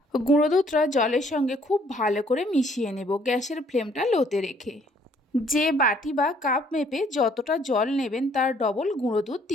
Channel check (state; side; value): normal; both; correlation 0.63